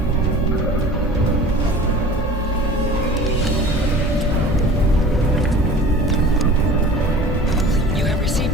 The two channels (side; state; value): both; normal; correlation 0.42